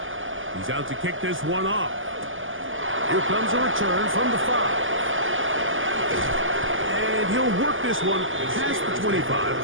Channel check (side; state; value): left; late; 0.58 ms